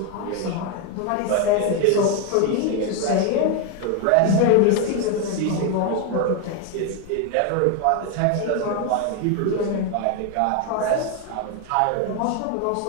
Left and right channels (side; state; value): both; different; correlation 0.01